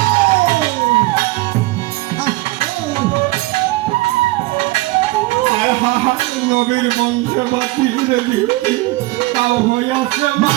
নবীর বংশে বাতিলে ধরতে তাও হয়েছে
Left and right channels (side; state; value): left; quieter; 20.5 dB